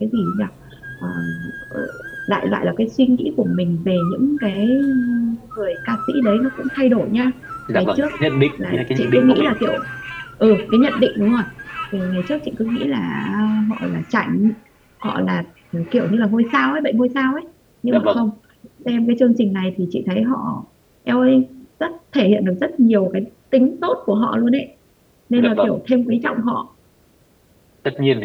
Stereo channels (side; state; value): both; identical; correlation 1.00